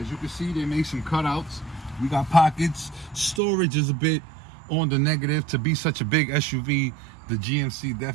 you can see, they made some cutouts. We got pockets. Storage is a bit on the negative. To be such a big SUV, the GMC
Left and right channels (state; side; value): drops out; left; at 3.4 s